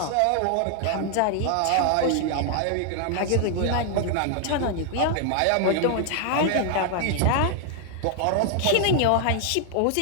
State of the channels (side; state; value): both; different; correlation 0.00